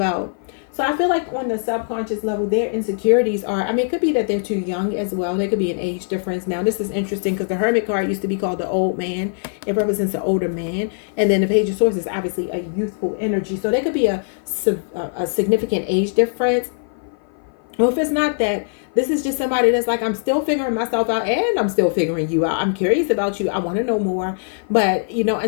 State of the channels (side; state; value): right; silent; 57 dB below the other